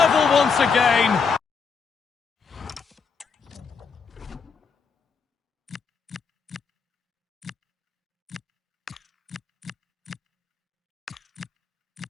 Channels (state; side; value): quieter; right; 5.6 dB